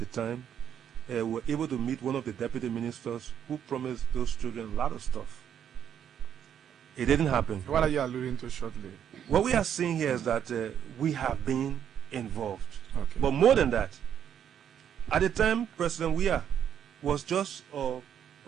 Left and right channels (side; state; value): left; quieter; 9.1 dB